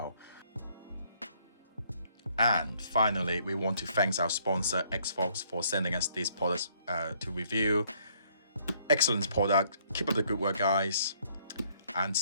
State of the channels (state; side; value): inverted; both; correlation -0.65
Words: And finally, we want to thank our sponsor ExFog for sending us these products to review. Excellent product. Keep up the good work, guys, and